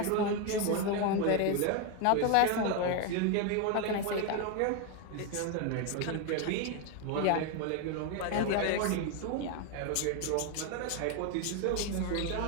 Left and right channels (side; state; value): both; different; correlation 0.01